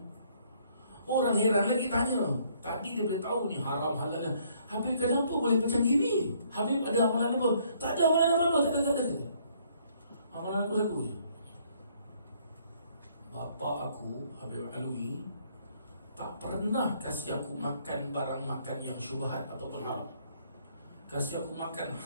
Orang heran lagi tanya, tadi dia boleh tahu ni haram halal. Habib kenapa boleh macam gini? Habib ada amalan apa? Tak ada amalan apa-apa, tak ada. Amalan aku satu je. Bapa aku, Habib Alwi, tak pernah kasih aku makan barang makan yang syubhat ataupun haram. Kasih aku makan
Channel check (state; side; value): inverted; both; correlation -0.65